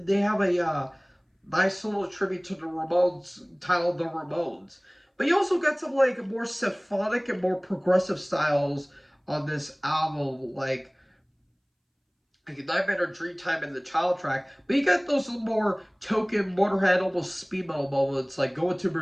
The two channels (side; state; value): both; identical; correlation 1.00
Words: they have a nice little tribute to the Ramones titled The Ramones. But you also got some, like, more symphonic and more progressive styles on this album, like Nightmare or Dreamtime in the Child track, but you got those more token Motorhead, almost speed metal moments like Going to